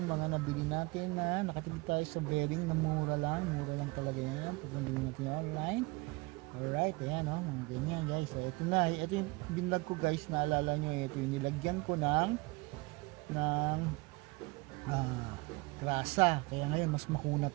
mga nabili natin na nakatipid tayo sa bearing na mura lang talaga yan, pag nabili natin online. Alright, ayan o, ganyan guys. So ito na, ito yung binlog ko guys, naalala nyo, ito yung nilagyan ko ng grasa, kaya ngayon mas makunat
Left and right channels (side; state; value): left; quieter; 25.1 dB